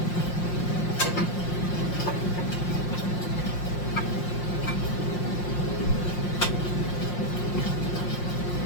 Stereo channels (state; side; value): late; right; 5.6 ms